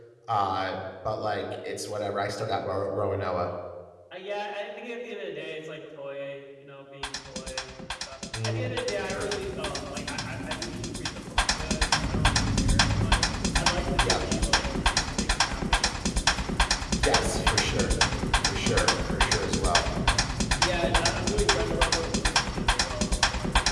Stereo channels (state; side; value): identical; both; correlation 1.00